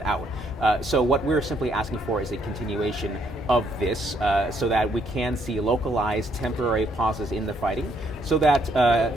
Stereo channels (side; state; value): both; normal; correlation 0.70